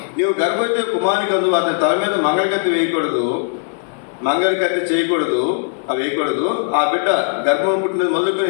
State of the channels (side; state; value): right; silent; digital silence